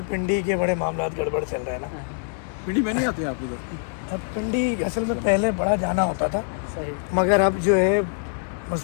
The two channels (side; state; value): right; silent; 62 dB below the other